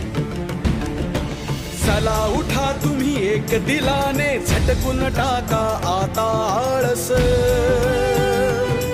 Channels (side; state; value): both; identical; correlation 1.00